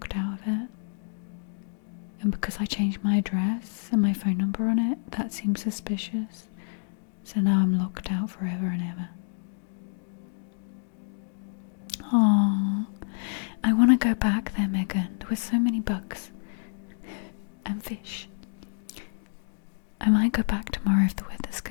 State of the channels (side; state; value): right; silent; digital silence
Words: out of it? And because I changed my address and my phone number on it, that seems suspicious. So now I'm locked out forever and ever. Aww. I want to go back there, Megan. There were so many bugs. And fish. I might go back tomorrow if the weather's